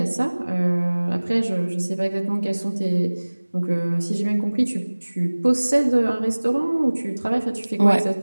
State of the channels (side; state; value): both; inverted; correlation -1.00